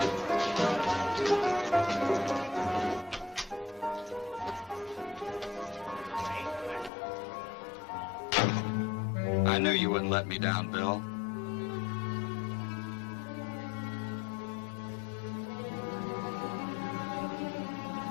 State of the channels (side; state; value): right; drops out; at 6.9 s